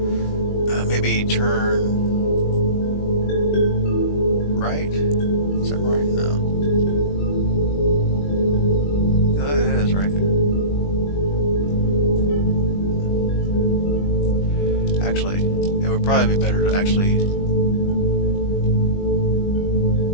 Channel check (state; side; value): late; right; 21 ms